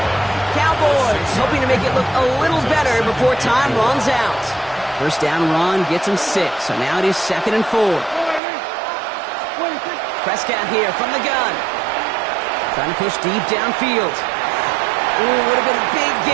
Cowboys hoping to make it look a little better before time runs out. 1st down run gets him 6, so now it is 2nd and 4. Prescott here from the gun. Trying to push deep downfield. Ooh, would have been a big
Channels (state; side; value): drops out; left; at 8.4 s